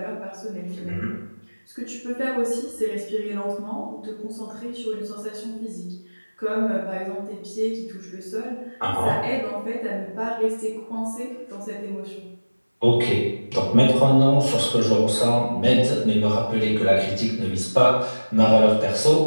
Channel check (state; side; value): inverted; both; correlation -1.00